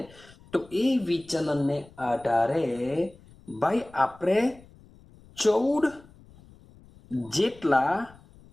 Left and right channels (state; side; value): noise; left; rumble, 24 dB below the sound